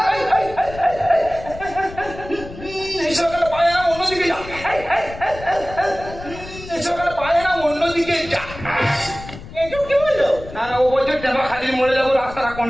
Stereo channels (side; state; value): left; noise; rumble, 14 dB below the sound